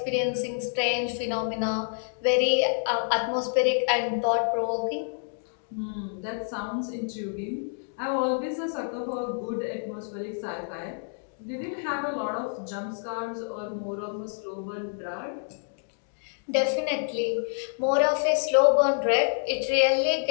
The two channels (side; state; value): right; silent; digital silence